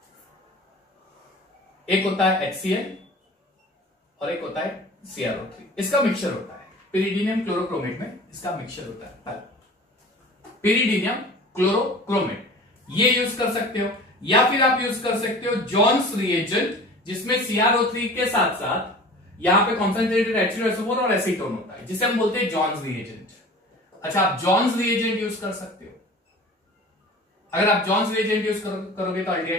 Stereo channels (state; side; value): normal; both; correlation 0.41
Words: एक होता है HCl और एक होता है CrO3, इसका मिक्सचर होता है। पिरिडीनियम क्लोरोक्रोमेट में इसका मिक्सचर होता है। पहला पिरिडीनियम क्लोरोक्रोमेट, ये यूज कर सकते हो, या फिर आप यूज कर सकते हो जॉन्स रिएजेंट, जिसमें CrO3 के साथ साथ यहां पे कॉन्सेंट्रेटेड H2SO4 और एसीटोन होता है, जिसे हम बोलते हैं जॉन्स रिएजेंट। अच्छा, आप जॉन्स रिएजेंट यूज कर सकते हो, अगर आप जॉन्स रिएजेंट यूज करोगे तो